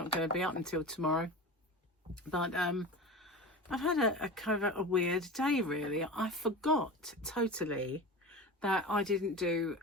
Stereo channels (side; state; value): both; normal; correlation 0.30